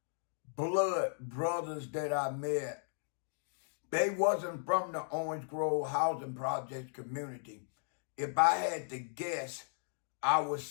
blood brothers that I met. They wasn't from the Orange Grove Housing Project community. If I had to guess, I would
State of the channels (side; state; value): right; silent; digital silence